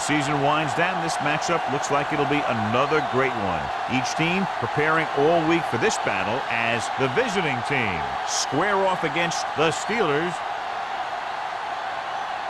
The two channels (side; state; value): both; identical; correlation 1.00